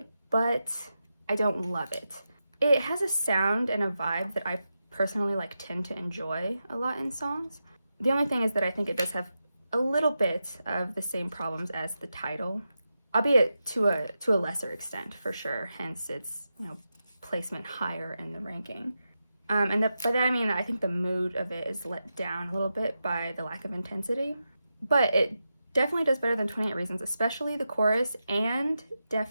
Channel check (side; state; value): both; inverted; correlation -0.89